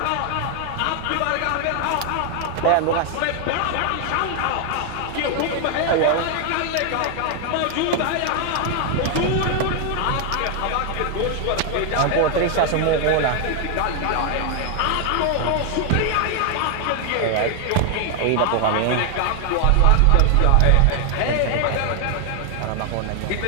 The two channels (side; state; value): both; different; correlation 0.00